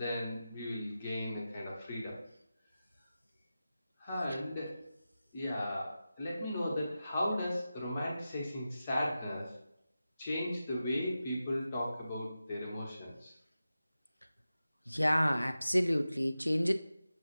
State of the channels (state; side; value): inverted; both; correlation -0.93